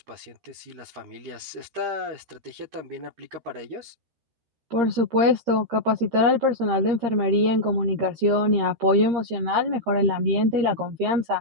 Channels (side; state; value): left; late; 13 ms